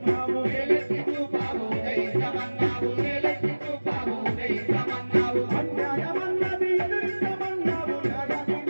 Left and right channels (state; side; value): inverted; both; correlation -1.00